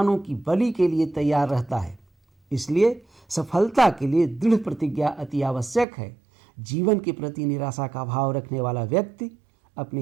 की बलि के लिए तैयार रहता है। इसलिए सफलता के लिए दृढ़ प्रतिज्ञा अति आवश्यक है। जीवन के प्रति निराशा का भाव रखने वाला व्यक्ति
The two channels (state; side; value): drops out; left; at 5.9 s